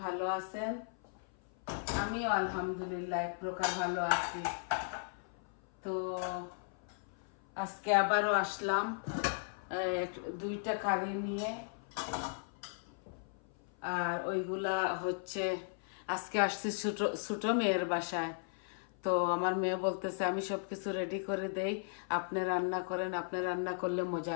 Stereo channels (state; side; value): silent; right; 53 dB below the other